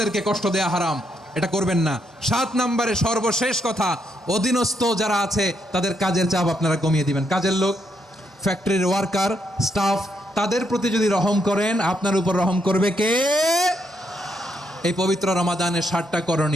কষ্ট দেয়া হারাম, এটা করবেন না। 7 নম্বরে সর্বশেষ কথা, অধীনস্থ যারা আছে তাদের কাজের চাপ আপনারা কমিয়ে দিবেন। কাজের লোক, ফ্যাক্টরির ওয়ার্কার, স্টাফ, তাদের প্রতি যদি রহম করেন, আপনার উপর রহম করবে কে? এই পবিত্র রমাদানের 7টা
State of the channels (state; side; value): normal; both; correlation 0.77